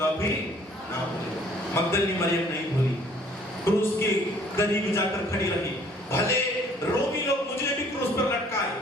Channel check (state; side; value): normal; both; correlation 0.58